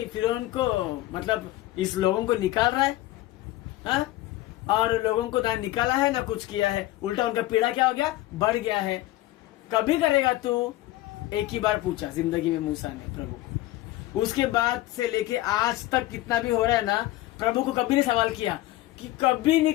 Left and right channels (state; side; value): quieter; right; 16.4 dB